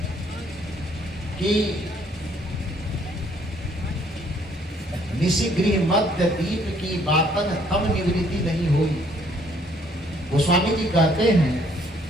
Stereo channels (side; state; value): both; normal; correlation 0.64